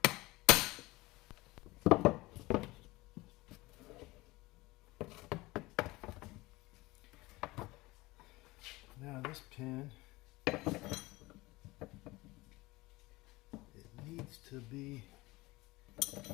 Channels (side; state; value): right; quieter; 21.0 dB